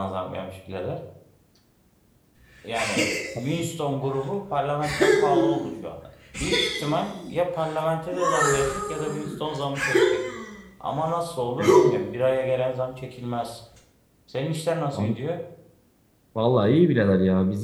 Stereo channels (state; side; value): identical; both; correlation 1.00